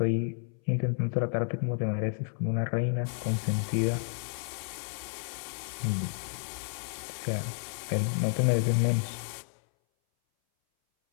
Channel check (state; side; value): silent; right; 57 dB below the other